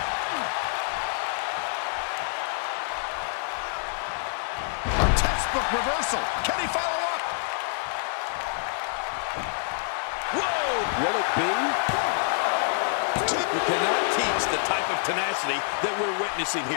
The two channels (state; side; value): silent; right; digital silence